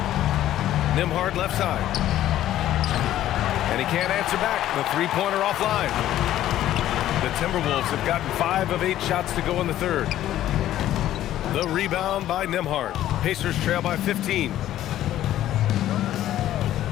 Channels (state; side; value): quieter; right; 12.9 dB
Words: Nembhard left side. And he can't answer back. The 3-pointer offline. The Timberwolves have gotten 5 of 8 shots to go in the 3rd. The rebound by Nembhard. Pacers trail by 15.